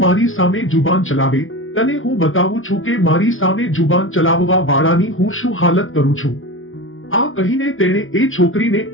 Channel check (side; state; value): right; late; 0.58 ms